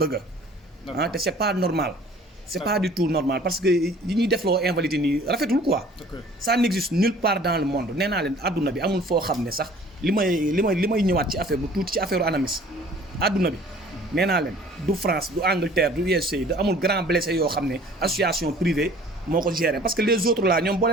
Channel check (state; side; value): normal; both; correlation 0.51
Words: te c'est pas normal. c'est pas du tout normal parce que yi ñuy defloo invalidé nii rafetul quoi. Ça n'existe nulle part dans le monde nee naa leen adduna bi amul foo xam ne sax li may ñëwaat ci affaire bu tuuti ci affaire ANAMIS adduna bi nee naa leen du France du Angleterre du USA du amul grand blessé yoo xam ne association privée moo ko géré parce que les autres là ñoom boo